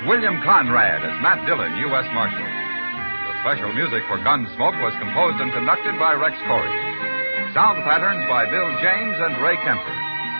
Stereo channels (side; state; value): both; inverted; correlation -1.00